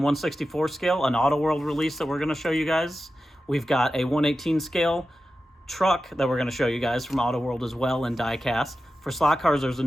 1/64 scale an Auto World release that we're going to show you guys. We've got a 1/18 scale truck that we're going to show you guys from Auto World as well in diecast. For slot cars, there's a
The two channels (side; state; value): both; normal; correlation 0.92